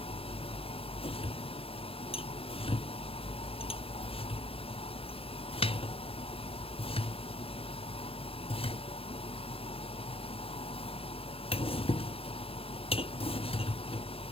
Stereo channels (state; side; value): late; right; 0.28 ms